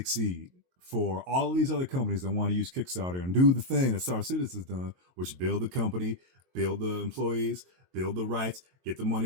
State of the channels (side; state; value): left; late; 22 ms